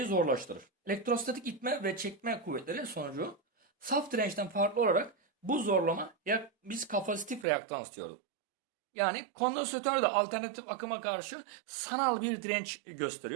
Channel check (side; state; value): left; drops out; at 7.5 s